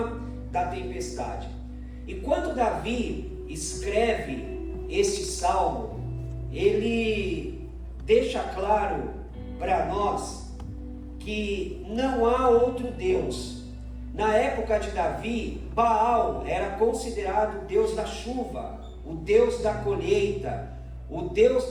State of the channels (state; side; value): identical; both; correlation 1.00